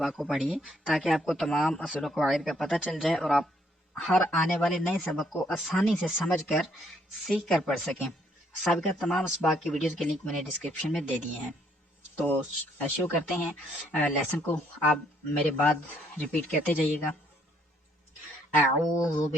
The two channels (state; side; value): normal; both; correlation 0.69